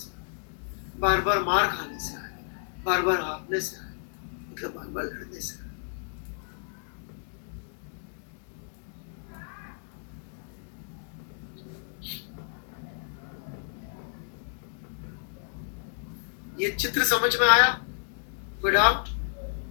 बार बार मार खाने से आएगा, बार बार हारने से आएगा, मतलब बार बार लड़ने से आएगा। ये चित्र समझ में आया? कोई डाउट?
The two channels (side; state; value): right; silent; digital silence